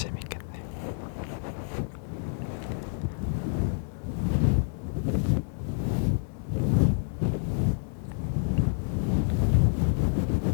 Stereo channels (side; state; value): right; silent; digital silence